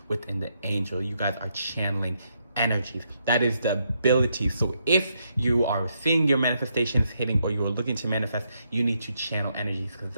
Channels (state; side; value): inverted; both; correlation -0.78